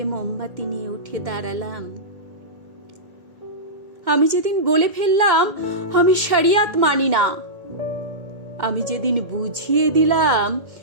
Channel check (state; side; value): late; left; 1.9 ms